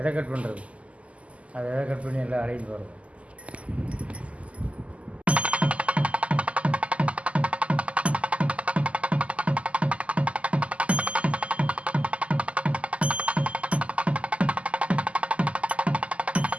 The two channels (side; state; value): left; late; 0.064 ms